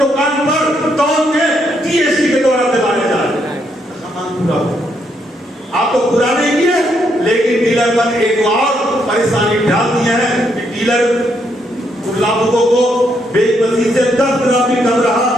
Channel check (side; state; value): both; normal; correlation 0.76